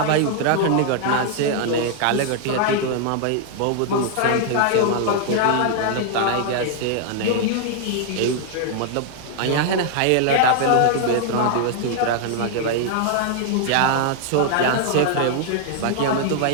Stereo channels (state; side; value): different; both; correlation -0.01